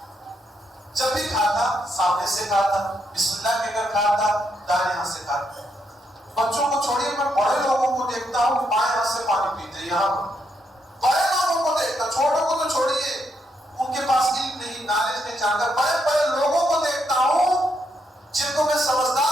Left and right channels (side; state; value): both; normal; correlation 0.78